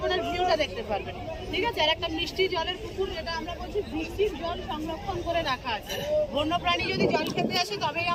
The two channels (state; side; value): identical; both; correlation 1.00